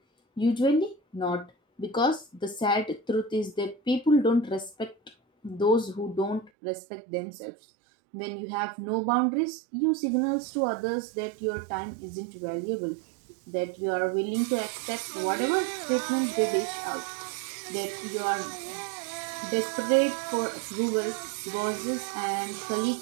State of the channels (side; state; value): left; drops out; at 6.5 s